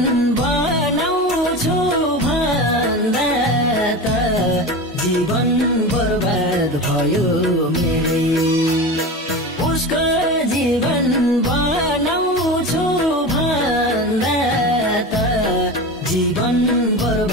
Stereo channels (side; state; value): both; normal; correlation 0.27